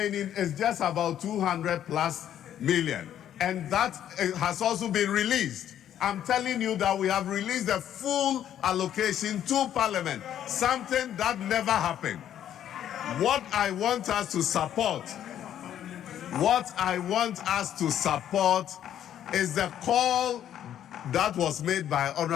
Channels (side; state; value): right; quieter; 10.6 dB